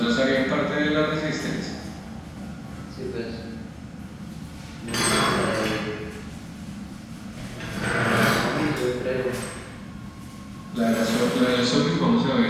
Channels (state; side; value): identical; both; correlation 1.00